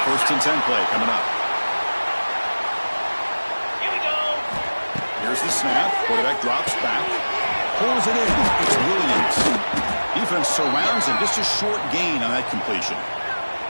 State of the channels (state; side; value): inverted; both; correlation -1.00